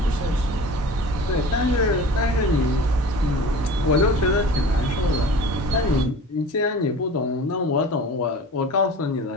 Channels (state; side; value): normal; both; correlation 0.39